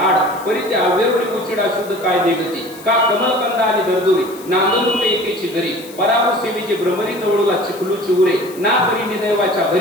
आड, परी त्या अवेरवडी उचिडा शुद्ध काय निगती, का कमलकंद आणि दरदुरी, नांदरूप एकेची घरी, पराभू सेवेची भ्रमरी जवळला चिखलूची उरे, ना परी निदैवाच्या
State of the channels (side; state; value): left; noise; hiss, 19 dB below the sound